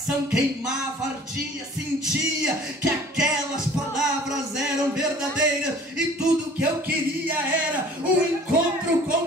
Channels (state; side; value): normal; both; correlation 0.49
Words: queimava, ardia, sentia que aquelas palavras eram verdadeiras, e tudo o que eu queria era um encontro